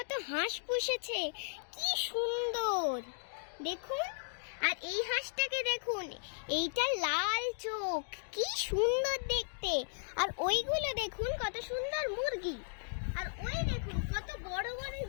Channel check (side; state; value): right; silent; digital silence